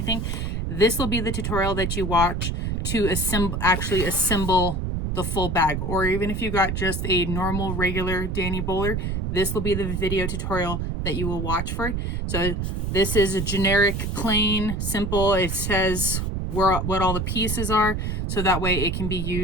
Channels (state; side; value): noise; right; rumble, 2 dB below the sound